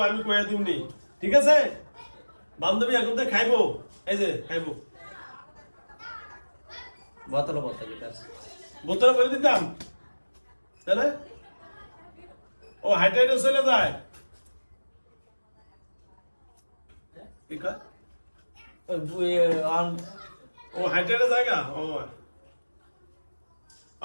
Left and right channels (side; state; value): both; inverted; correlation -1.00